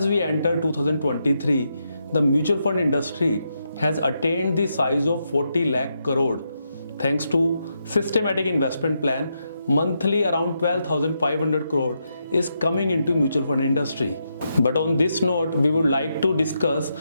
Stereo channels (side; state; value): both; inverted; correlation -0.82